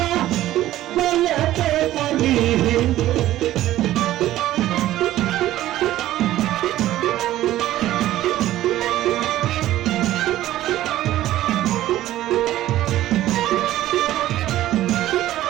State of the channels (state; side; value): quieter; left; 14.2 dB